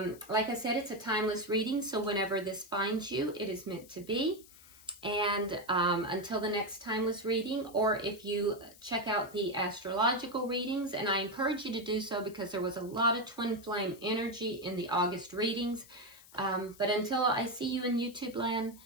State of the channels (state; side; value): noise; left; hiss, 22 dB below the sound